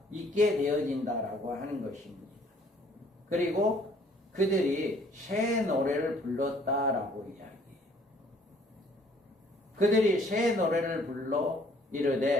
있게 되어진다라고 하는 것입니다. 그리고 그들이 새 노래를 불렀다라고 이야기해요. 그들이 새 노래를 불러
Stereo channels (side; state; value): both; normal; correlation 0.59